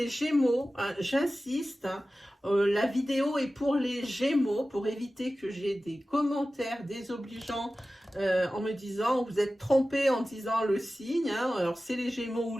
Gémeaux, hein, j'insiste, hein, la vidéo est pour les Gémeaux, pour éviter que j'ai des commentaires désobligeants en me disant, vous êtes trompé en disant le signe, hein, alors c'est les Gémeaux ou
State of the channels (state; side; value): normal; both; correlation 0.95